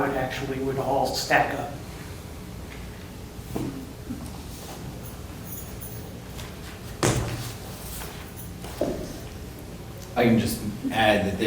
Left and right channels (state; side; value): identical; both; correlation 1.00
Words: it actually would all stack up. I can just add